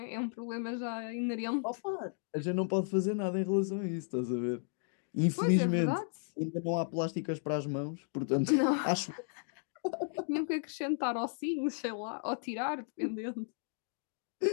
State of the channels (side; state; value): right; silent; digital silence